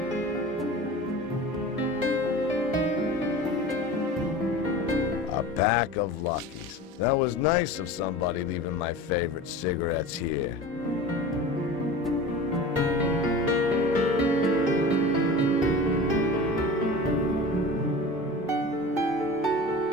A pack of Luckies. That was nice of somebody leaving my favorite cigarettes here.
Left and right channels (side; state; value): both; normal; correlation 0.35